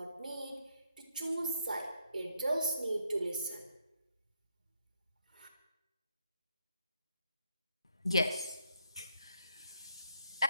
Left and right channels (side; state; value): both; inverted; correlation -0.76